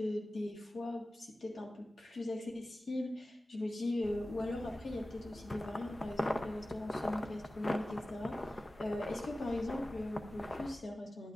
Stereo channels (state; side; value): normal; both; correlation 0.96